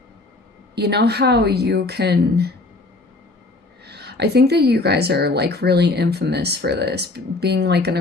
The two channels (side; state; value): right; quieter; 3.1 dB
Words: you know how you can, I think that you guys are like really infamous for this, being like an